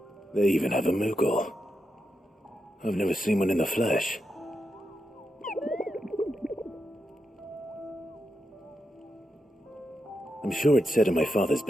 They even have a Moogle. I've never seen one in the flesh. I'm sure it said in my father's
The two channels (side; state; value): both; normal; correlation 0.86